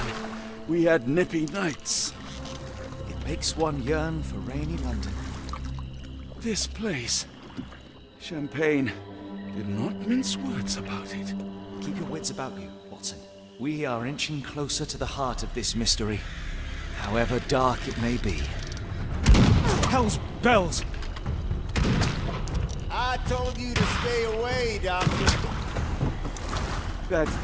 we had nippy nights. It makes one yearn for rainy London. This place, Champagne, did not mince words about it. Keep your wits about you, Watson. We are inching closer to the heart of this mystery, however dark it may be. Hell's bells! I told you to stay away, Doctor. That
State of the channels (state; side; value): identical; both; correlation 1.00